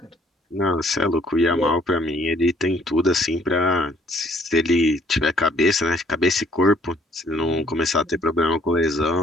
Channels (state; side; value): normal; both; correlation 0.62